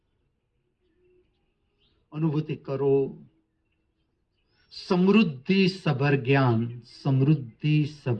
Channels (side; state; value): both; identical; correlation 1.00